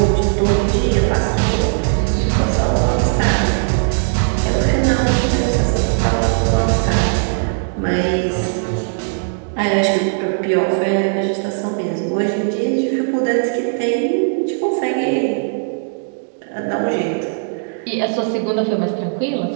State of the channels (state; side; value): silent; left; digital silence